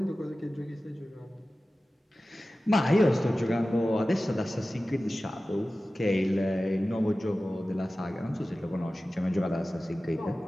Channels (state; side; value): normal; both; correlation 0.96